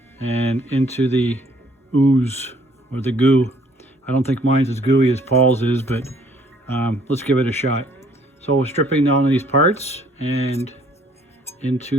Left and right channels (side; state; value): both; normal; correlation 0.61